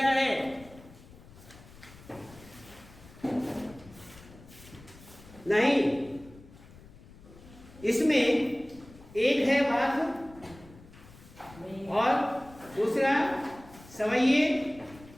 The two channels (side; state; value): left; noise; rumble, 21 dB below the sound